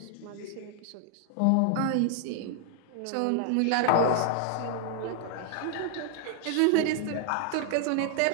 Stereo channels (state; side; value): different; both; correlation 0.00